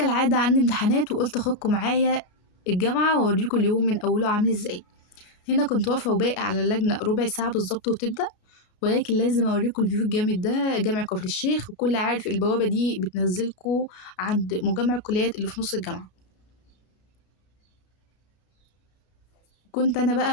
عندي امتحانات وقلت اخدكم معايا الجامعة واوريكم اليوم من اوله عامل ازاي. هنا كنت واقفة وباقي على اللجنة ربع ساعة بالظبط وتبدأ، ولكن لازم اوريكم الفيو الجامد ده. جامع كفر الشيخ، وكل عارف البوابة دي بتنزلكوا عند مجمع الكليات اللي في نص الجامعة. كنت انا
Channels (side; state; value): right; late; 33 ms